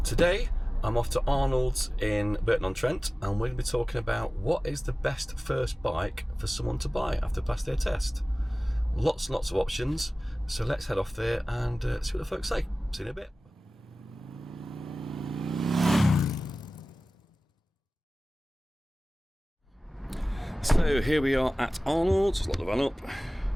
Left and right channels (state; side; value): normal; both; correlation 0.97